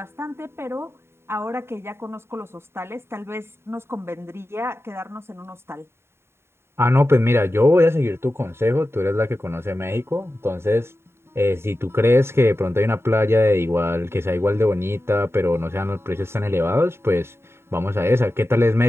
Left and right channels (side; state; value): left; late; 0.12 ms